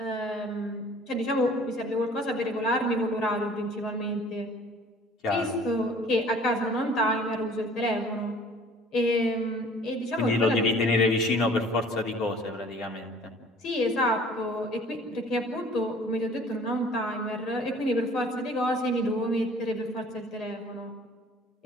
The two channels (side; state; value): both; normal; correlation 0.51